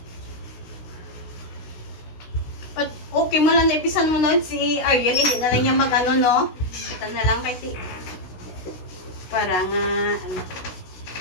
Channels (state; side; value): late; right; 16 ms